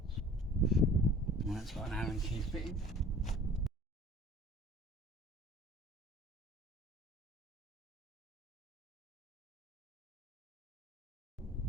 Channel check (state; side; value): normal; both; correlation 0.48